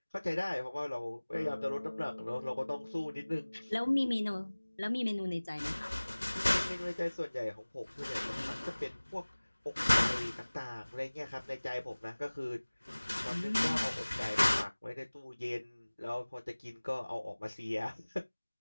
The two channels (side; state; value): both; inverted; correlation -1.00